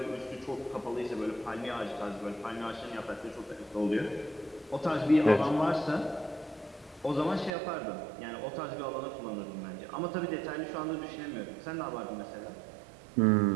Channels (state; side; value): drops out; left; at 7.5 s